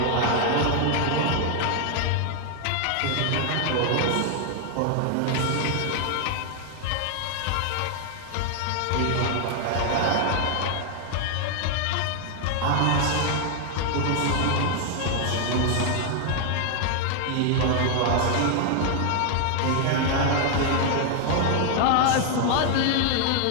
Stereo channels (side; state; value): both; different; correlation 0.00